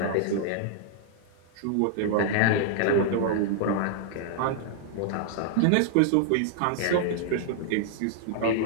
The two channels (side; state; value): both; different; correlation -0.01